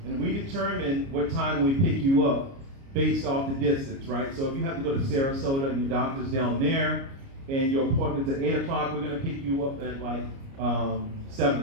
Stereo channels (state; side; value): late; left; 29 ms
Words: And we determine what time we pick you up based off the distance, right? So if you have to go to Sarasota and your doctor's down there and your appointment's at 8 o'clock, we're gonna pick you up at like 7